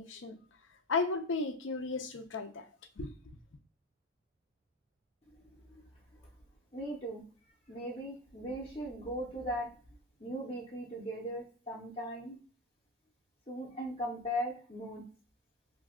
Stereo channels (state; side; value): normal; both; correlation 0.18